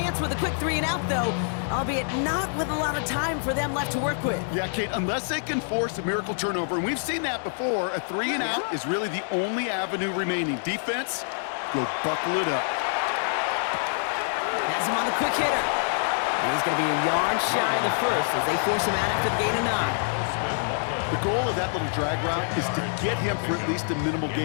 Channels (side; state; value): right; silent; digital silence